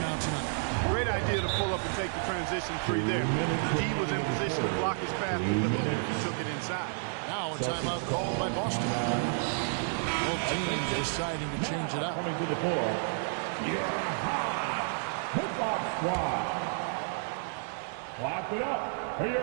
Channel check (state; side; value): silent; left; 57 dB below the other